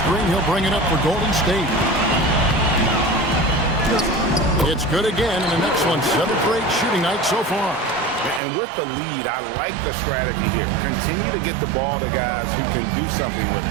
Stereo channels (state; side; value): drops out; left; at 8.4 s